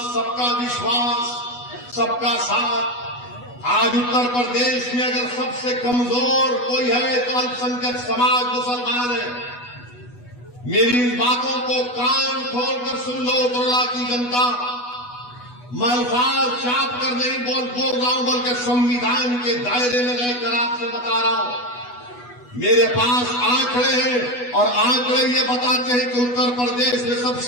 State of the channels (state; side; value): late; right; 8.2 ms